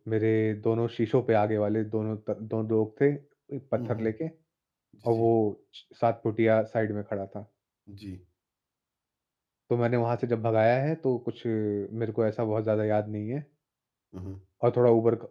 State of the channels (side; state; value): both; identical; correlation 1.00